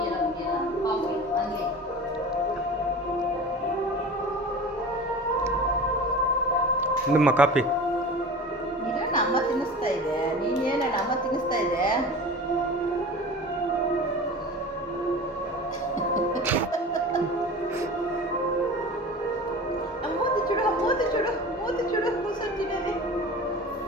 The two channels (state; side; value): normal; both; correlation 0.35